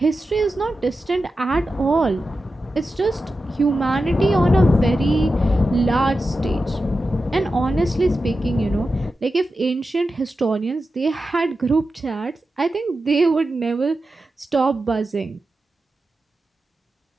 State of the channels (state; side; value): normal; both; correlation 0.92